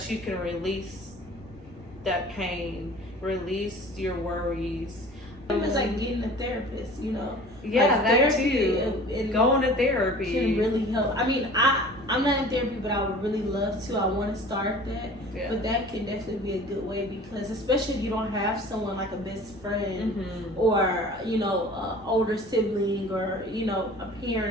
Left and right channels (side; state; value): right; noise; hum, 25 dB below the sound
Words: you can release that pain, release your worries. It's like getting a therapist, you know. Yeah, like that too. Going to therapy can really help. I mean, I'm not in therapy, but I would really love to. I want to start that. Yeah. But that can definitely be a good way, because especially if you don't have someone like a best friend or, you know, an older sibling or, you know, a